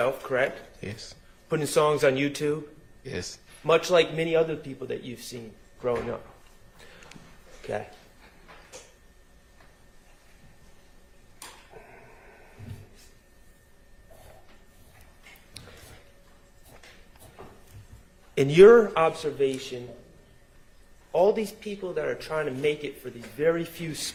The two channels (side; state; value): both; identical; correlation 1.00